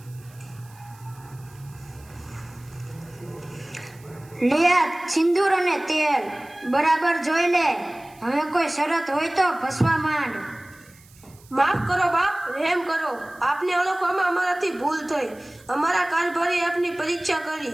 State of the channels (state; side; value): noise; right; hiss, 26 dB below the sound